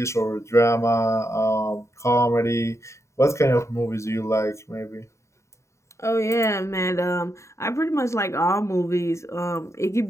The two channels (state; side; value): late; right; 0.14 ms